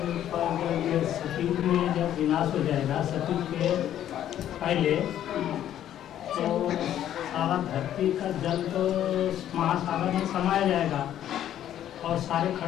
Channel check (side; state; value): right; quieter; 11.2 dB